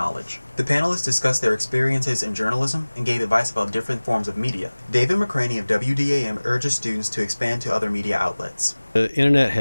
The panelists discussed their experiences in journalism and gave advice about different forms of media. David McCraney of WDAM urges students to expand to other media outlets. The internet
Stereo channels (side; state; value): both; inverted; correlation -1.00